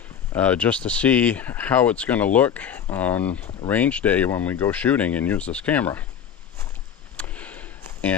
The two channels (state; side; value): quieter; right; 8.4 dB